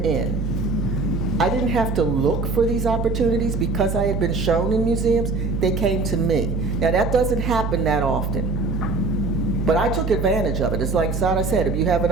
I didn't have to look for these opportunities because I had been shown in museums, they came to me. Now that doesn't happen that often, but I took advantage of it. It's like Sara said, if you have an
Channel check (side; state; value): right; noise; hum, 2 dB below the sound